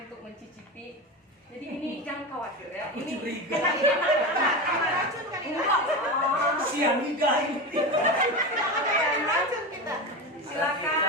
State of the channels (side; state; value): both; normal; correlation 0.21